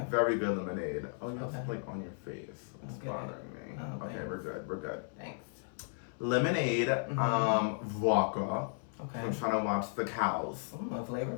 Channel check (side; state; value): right; silent; 54 dB below the other